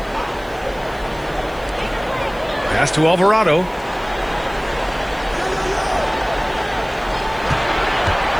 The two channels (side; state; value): right; noise; hiss, 25 dB below the sound